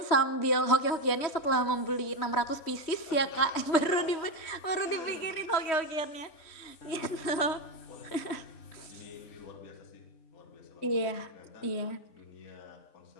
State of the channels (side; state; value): right; late; 3.2 ms